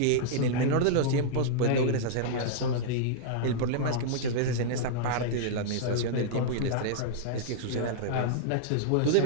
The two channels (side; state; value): both; different; correlation -0.02